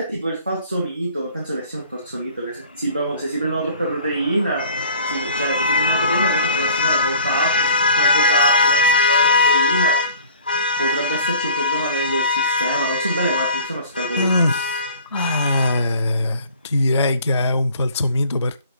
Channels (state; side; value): inverted; both; correlation -0.50